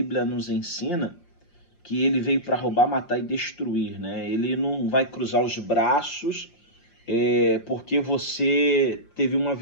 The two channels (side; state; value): right; late; 5.6 ms